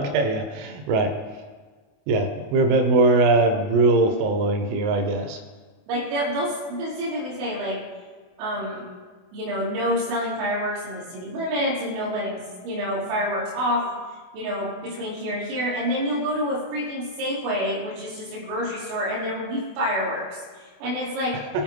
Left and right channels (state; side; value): late; left; 28 ms